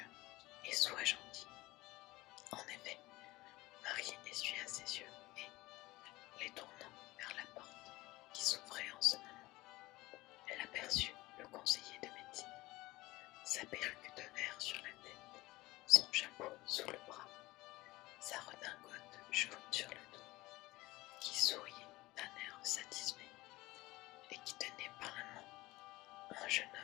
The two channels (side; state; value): right; quieter; 19.5 dB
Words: et sois gentil. » En effet, Marie essuya ses yeux et, les tournant vers la porte qui s'ouvrait en ce moment, elle aperçut le conseiller de médecine, sa perruque de verre sur la tête, son chapeau sous le bras, sa redingote jaune sur le dos, qui souriait d'un air satisfait et qui tenait par la main un jeune